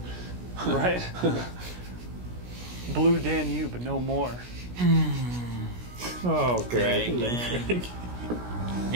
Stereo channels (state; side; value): late; left; 16 ms